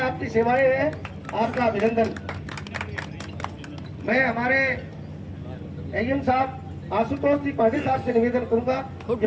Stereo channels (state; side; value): identical; both; correlation 1.00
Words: आपकी सेवाएं हैं, आपका अभिनंदन। मैं हमारे एएम साहब आशुतोष जी पांडे साहब से निवेदन करूंगा कि